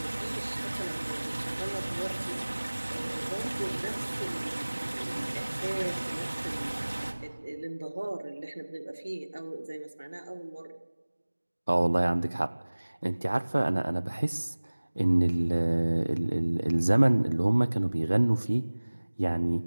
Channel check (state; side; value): inverted; both; correlation -1.00